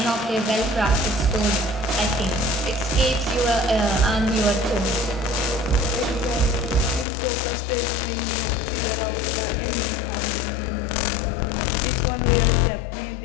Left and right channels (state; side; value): drops out; right; at 7.1 s